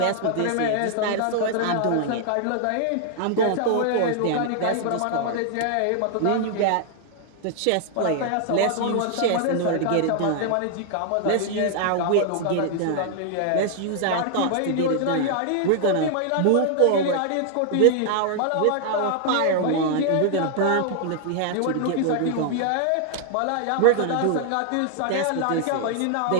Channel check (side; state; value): both; different; correlation 0.00